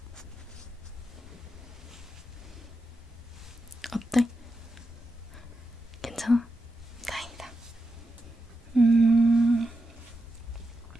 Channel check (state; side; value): normal; both; correlation 0.87